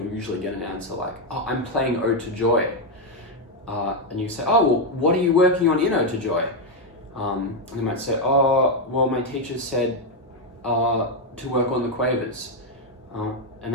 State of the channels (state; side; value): normal; both; correlation 0.03